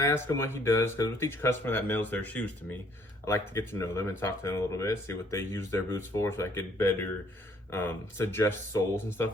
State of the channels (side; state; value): both; normal; correlation 0.63